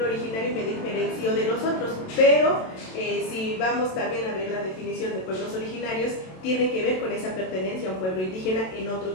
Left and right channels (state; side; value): late; right; 27 ms